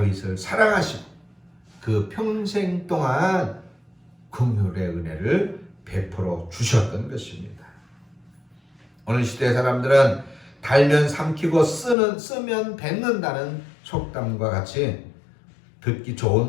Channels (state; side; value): drops out; right; at 12.0 s